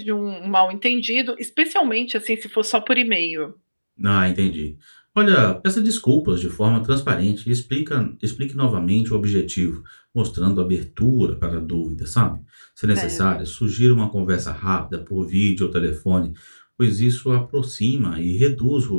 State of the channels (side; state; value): both; inverted; correlation -1.00